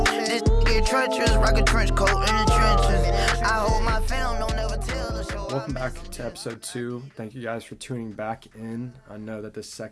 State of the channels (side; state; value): both; identical; correlation 1.00